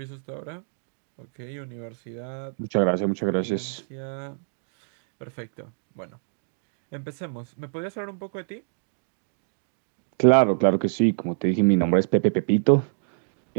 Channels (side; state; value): left; silent; digital silence